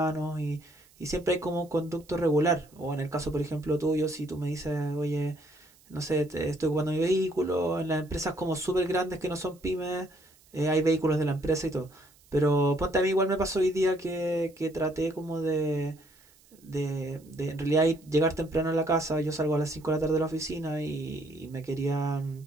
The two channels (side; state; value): right; noise; hiss, 29 dB below the sound